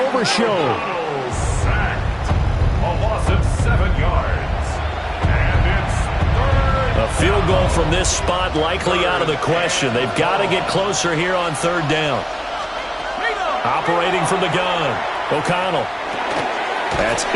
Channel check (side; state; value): both; identical; correlation 1.00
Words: Overshow. Sacked. A loss of 7 yards. And it's 3rd. A field goal from this spot likely out of the question. They've got to get closer here on 3rd down. Operating from the gun. O'Connell. That's